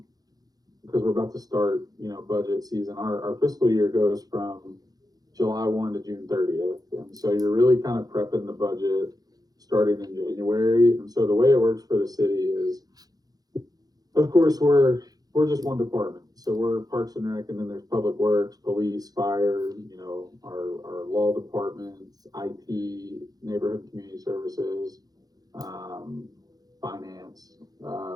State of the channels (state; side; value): late; left; 0.19 ms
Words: we're about to start, budget season. Our fiscal year goes from July 1 to June 30th. And so you're really kind of prepping the budget starting in January. And so the way it works for the city is, of course, we're just one department. So we're Parks and Rec, and then there's Public Works, Police, Fire, our law department, IT, Neighborhood Community Services, Finance.